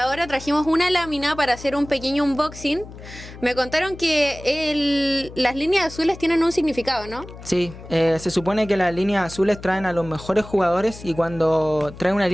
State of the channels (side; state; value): left; noise; hum, 15 dB below the sound